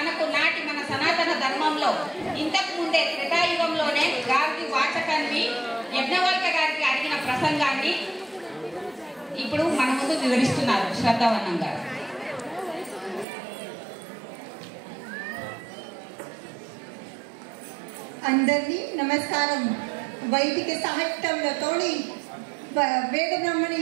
మన సనాతన ధర్మంలో ఇంతకు ముందే త్రేతాయుగంలోనే గార్గి వాచకాన్ని యజ్ఞవల్క గారికి అడిగిన ప్రసంగాన్ని ఇప్పుడు మన ముందు వివరిస్తున్నారు శ్రద్ధావనం గారు. అందరికీ నమస్కారం. వైదిక సాహిత్యంలోతోని వేద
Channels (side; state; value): left; drops out; at 13.2 s